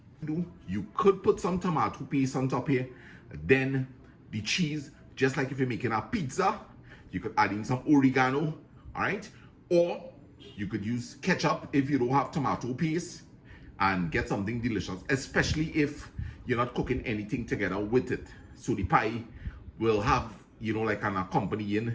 You could put some tomato paste on top here, then the cheese, just like if you're making a pizza, you could add in some oregano, all right? Or you could use ketchup if you don't have tomato paste and get something delicious, especially if you're not cooking anything together with it. So the pie will have, you know, like an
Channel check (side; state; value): both; identical; correlation 1.00